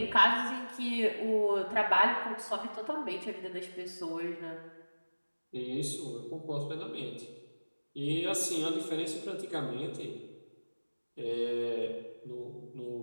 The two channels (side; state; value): both; inverted; correlation -1.00